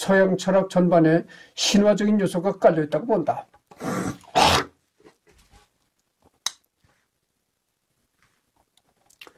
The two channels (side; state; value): both; identical; correlation 1.00